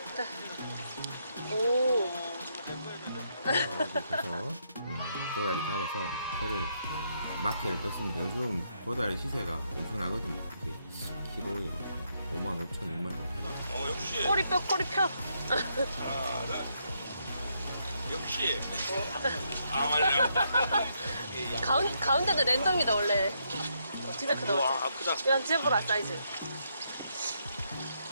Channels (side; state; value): both; inverted; correlation -0.77